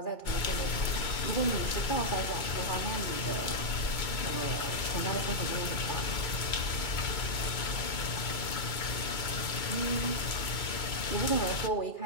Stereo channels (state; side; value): late; right; 2.2 ms